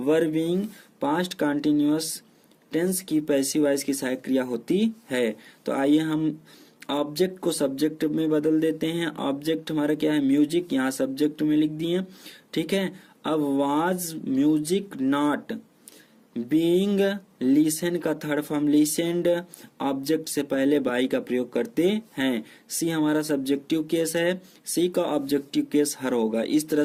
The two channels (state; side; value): identical; both; correlation 1.00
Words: being past continuous tense की पैसिव वॉइस की सहायक क्रिया होती है। तो आइए हम ऑब्जेक्ट को सब्जेक्ट में बदल देते हैं। ऑब्जेक्ट हमारा क्या है? म्यूजिक, यहाँ सब्जेक्ट में लिख दिए। ठीक है, अब was music not being, listen का थर्ड फॉर्म लिसेंड, ऑब्जेक्ट से पहले बाई का प्रयोग करते हैं। सी हमारा सब्जेक्टिव केस है, सी का ऑब्जेक्टिव केस हर होगा। इस तरह